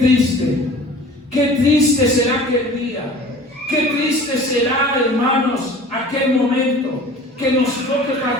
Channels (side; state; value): both; normal; correlation 0.43